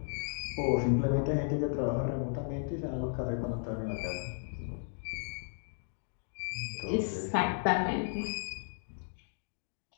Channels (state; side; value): silent; right; digital silence